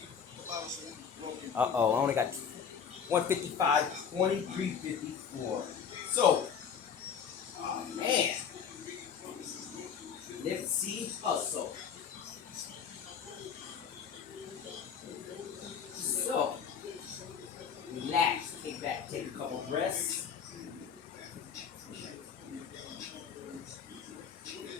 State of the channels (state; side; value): quieter; right; 7.2 dB